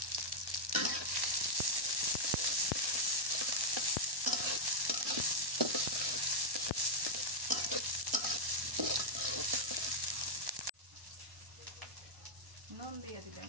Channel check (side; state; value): left; late; 1.1 ms